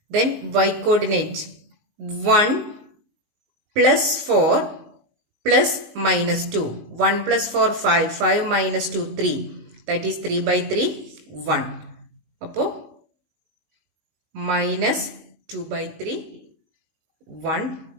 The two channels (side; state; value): left; late; 19 ms